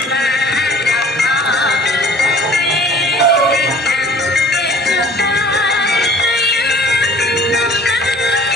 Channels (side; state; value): both; normal; correlation 0.50